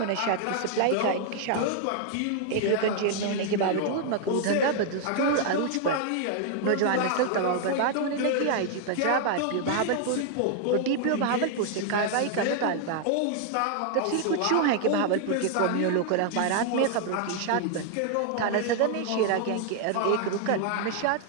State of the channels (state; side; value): different; both; correlation 0.00